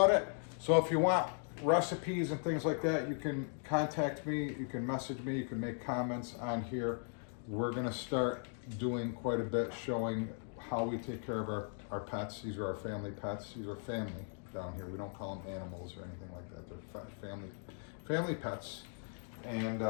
it. So if you want recipes and things like that, you can contact me, you can message me, you can make comments on here. We're gonna start doing quite a bit showing how we take care of our pets. These are our family pets. These are family down here. We don't call them animals or anything like that. They're family pets. And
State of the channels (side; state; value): right; silent; 52 dB below the other